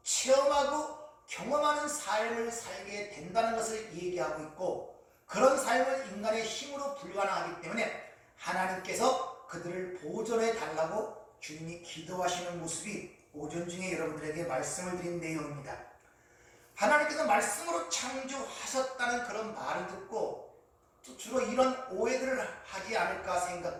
체험하고 경험하는 삶을 살게 된다는 것을 얘기하고 있고 그런 삶을 인간의 힘으로 불가능하기 때문에 하나님께서 그들을 보존해 달라고 주님이 기도하시는 모습이 오전 중에 여러분들에게 말씀을 드린 내용입니다. 하나님께서 말씀으로 창조하셨다는 그런 말을 듣고 주로 이런 오해들을 하지 않을까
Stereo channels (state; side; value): identical; both; correlation 1.00